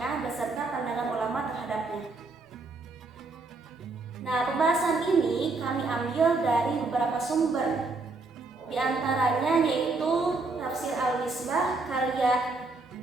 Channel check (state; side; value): quieter; left; 3.6 dB